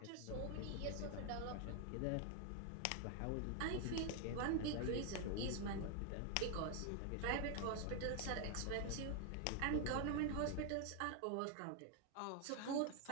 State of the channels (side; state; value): both; different; correlation 0.00